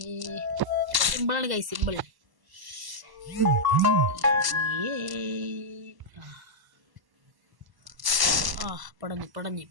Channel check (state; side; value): late; left; 1.1 ms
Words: സിമ്പിളാണ് കൈ, സിമ്പിൾ.